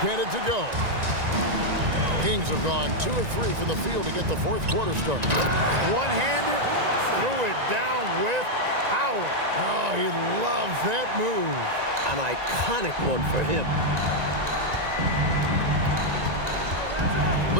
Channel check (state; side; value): late; left; 1.9 ms